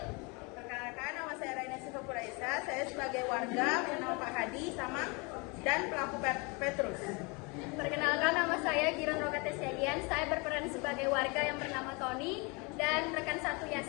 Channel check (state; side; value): quieter; right; 29.4 dB